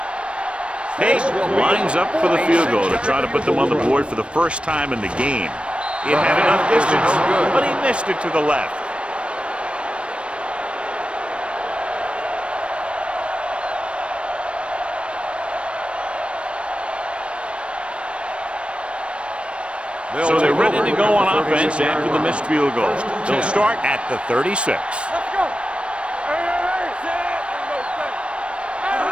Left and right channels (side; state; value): left; late; 0.059 ms